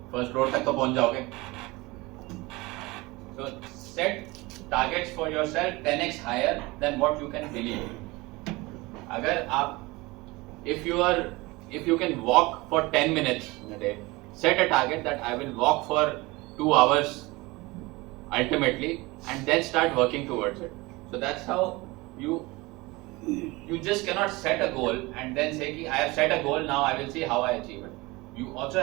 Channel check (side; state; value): left; quieter; 22.7 dB